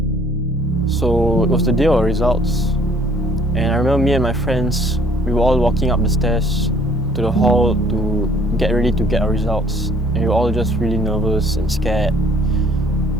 So it was the day of our results, and I remember me and my friends, we were all walking up the stairs to the hall to get ready to get our results, and we were all just really nervous and scared.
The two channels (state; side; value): normal; both; correlation 0.58